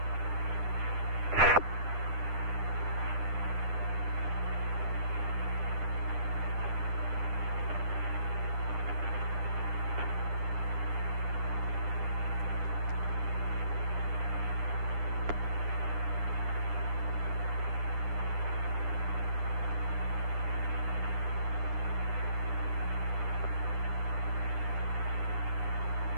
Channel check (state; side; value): late; left; 9.9 ms